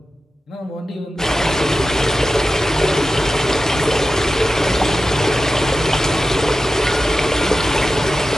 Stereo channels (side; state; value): both; normal; correlation 0.92